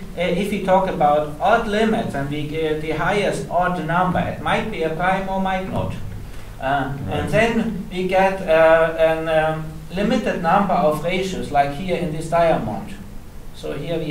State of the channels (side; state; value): both; identical; correlation 1.00